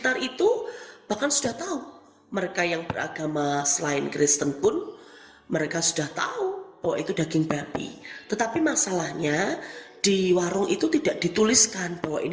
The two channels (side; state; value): both; identical; correlation 1.00